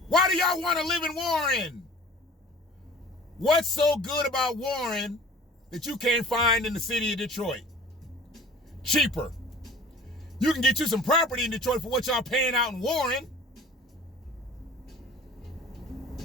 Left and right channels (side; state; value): both; normal; correlation 0.45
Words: Why do y'all want to live in Warren? What's so good about Warren that you can't find in the city of Detroit? Cheaper. You can get you some property in Detroit for what y'all paying out in Warren.